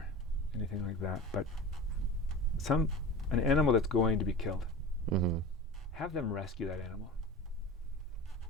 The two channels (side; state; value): both; normal; correlation 0.33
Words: anything like that, but an animal that's going to be killed. Mm-hmm. Have them rescue that animal.